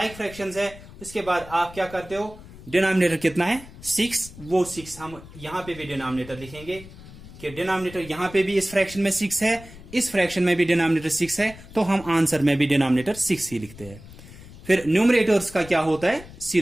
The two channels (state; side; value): noise; left; rumble, 18 dB below the sound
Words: फ्रैक्शंस है, उसके बाद आप क्या करते हो, डिनोमिनेटर कितना है 6, वो 6 हम यहां पे भी डिनोमिनेटर लिखेंगे कि डिनोमिनेटर यहां पे भी इस फ्रैक्शन में 6 है, इस फ्रैक्शन में भी डिनोमिनेटर 6 है, तो हम आंसर में भी डिनोमिनेटर 6 ही लिखते हैं। फिर न्यूमरेटर्स का क्या होता है,